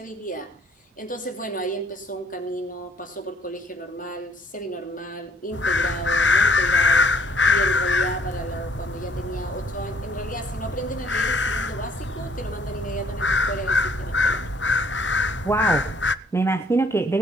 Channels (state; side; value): normal; both; correlation 0.61